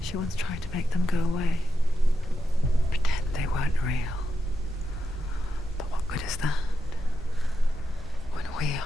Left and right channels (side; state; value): both; normal; correlation 0.86